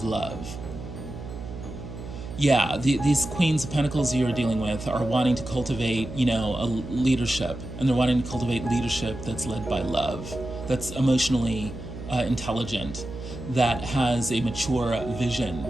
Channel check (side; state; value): right; noise; hum, 11 dB below the sound